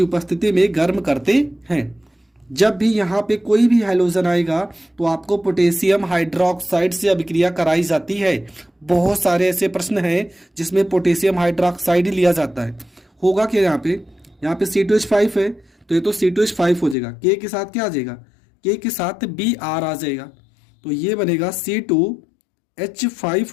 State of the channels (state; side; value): drops out; right; at 16.9 s